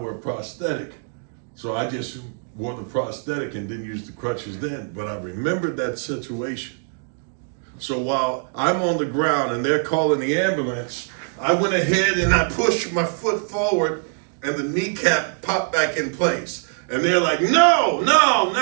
a prosthetic. So I just wore the prosthetic and didn't use the crutches then. But I remembered that situation. So while I'm on the ground and they're calling the ambulance, I went ahead and I pushed my foot forward and the kneecap popped back in place. And they're like, no, no,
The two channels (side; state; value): left; silent; 64 dB below the other